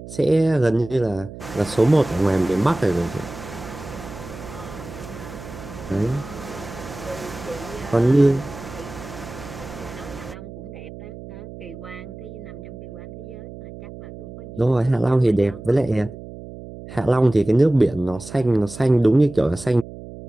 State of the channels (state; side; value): noise; right; hum, 14 dB below the sound